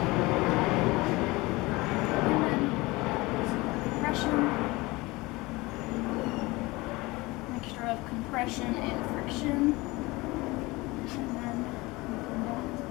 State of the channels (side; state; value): right; quieter; 22.2 dB